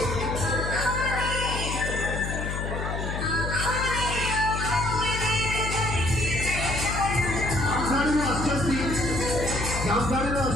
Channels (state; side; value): noise; left; hum, 3 dB below the sound